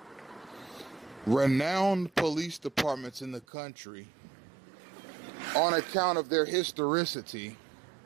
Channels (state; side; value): drops out; left; at 3.5 s